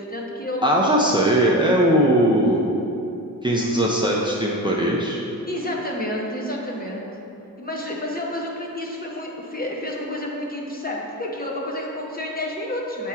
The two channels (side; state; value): both; normal; correlation 0.25